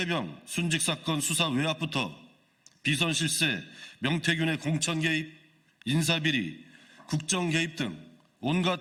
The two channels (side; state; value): both; identical; correlation 1.00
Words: 순직사건 수사 외압부터 비선 실세, 명태균의 공천 개입, 인사비리, 국정 개입 등